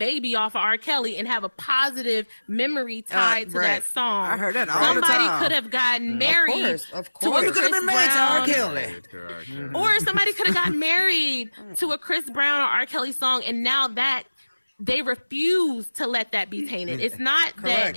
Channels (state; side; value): inverted; both; correlation -1.00